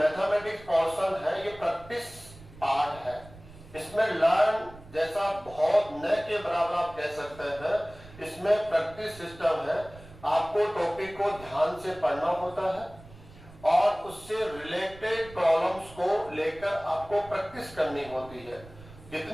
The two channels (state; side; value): noise; right; rumble, 20 dB below the sound